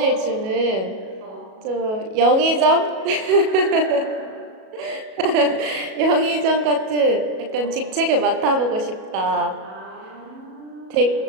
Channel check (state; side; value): late; left; 37 ms